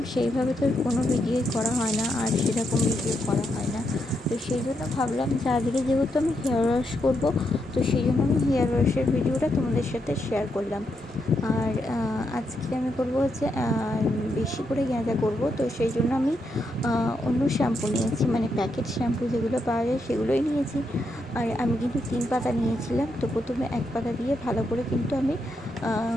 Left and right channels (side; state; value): both; normal; correlation 0.81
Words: সেইভাবে তো কোনো ভিডিওই করা হয় না, আর সেরকম ভিডিও করা হয় না। তো সেই জন্য ভাবলাম যে আজকে যেহেতু আমি হেয়ার ওয়াশ করবো, তো সেই জন্য আমি হেয়ার ওয়াশের ভিডিওটা তোমাদের সাথে শেয়ার করলাম। আর আজকে আমি করবো হচ্ছে বেশি করে গাঁজা করব। তো সেই জন্য আমি অন্য শ্যাম্পু নিয়েছি, মানে প্যাকেট শ্যাম্পু যেগুলো পাওয়া যায় সেগুলোই নিয়েছি। আর আমি কিন্তু 3 পাতা নিয়েছিলাম। তো প্রথমে 1 পাতা দিয়ে ভালো করে কিন্তু আমি